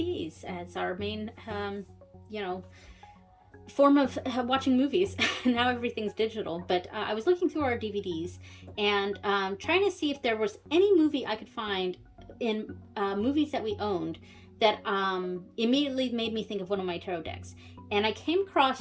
as our main, form of watching movies. Now everything's digital, but I was looking through our DVDs and trying to see if there was any movie I could find in movies that we owned that immediately made me think of one of my tarot decks. And I came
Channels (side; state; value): both; identical; correlation 1.00